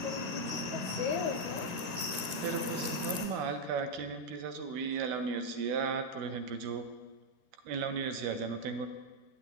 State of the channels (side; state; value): left; late; 13 ms